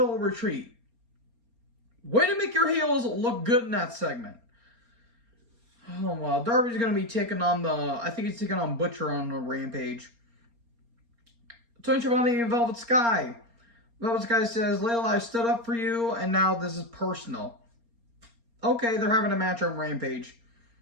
Way to make your heels look good in that segment. Oh, well. Darby's going to be taking on I think he's taking on Butcher on the Rampage. Tony Schiavone and Velvet Sky. Velvet Sky says, Layla, I stood up for you, and now this is personal. Okay, they're having a match on Rampage.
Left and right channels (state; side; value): late; left; 4.3 ms